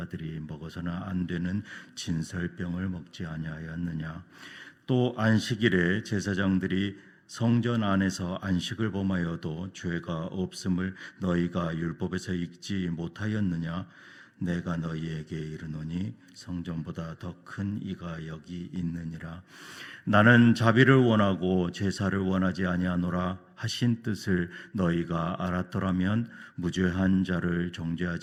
먹어서는 안 되는 진설병을 먹지 아니하였느냐? 또 안식일에 제사장들이 성전 안에서 안식을 범하여도 죄가 없음을 너희가 율법에서 읽지 못하였느냐? 내가 너희에게 이르노니 성전보다 더 큰 이가 여기 있느니라. 나는 자비를 원하고 제사를 원하지 아니하노라 하신 뜻을 너희가 알았더라면 무죄한 자를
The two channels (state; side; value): identical; both; correlation 1.00